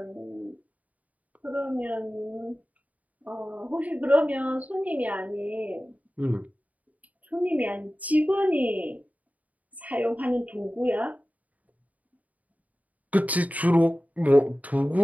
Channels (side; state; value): left; late; 0.073 ms